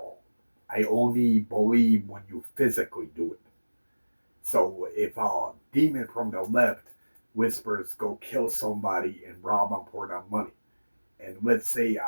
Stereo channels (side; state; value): both; inverted; correlation -1.00